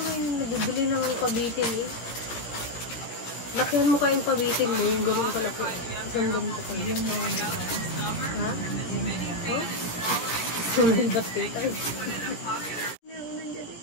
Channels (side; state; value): right; late; 17 ms